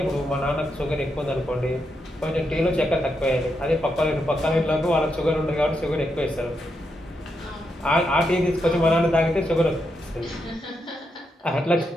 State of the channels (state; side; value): normal; both; correlation 0.83